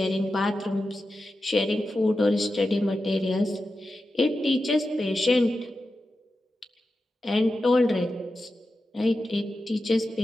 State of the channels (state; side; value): normal; both; correlation 0.91